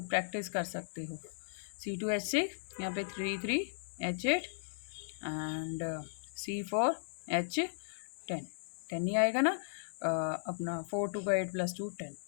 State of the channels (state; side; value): silent; right; 53 dB below the other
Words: प्रैक्टिस कर सकते हो। C2H6, यहाँ पे 3H8 एंड C4H10, 10 ही आएगा ना, अपना 4 2 का 8 + 2 10।